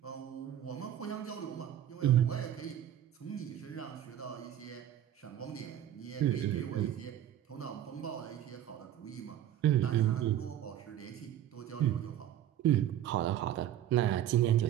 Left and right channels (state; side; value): quieter; left; 11.3 dB